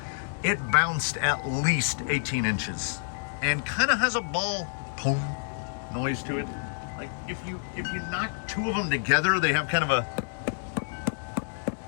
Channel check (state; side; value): silent; right; digital silence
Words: it bounced at least 18 inches and kind of has a ball boom noise to it. Like if you knock 2 of them together, they have kind of a,